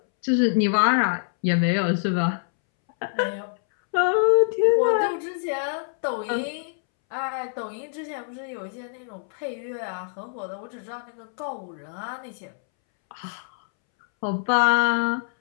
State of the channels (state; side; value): silent; right; 62 dB below the other